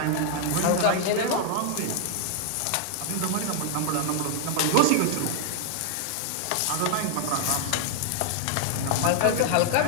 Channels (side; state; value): both; different; correlation 0.00